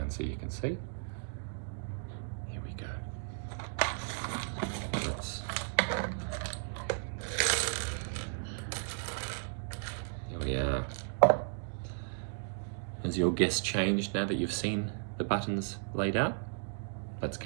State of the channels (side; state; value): left; silent; digital silence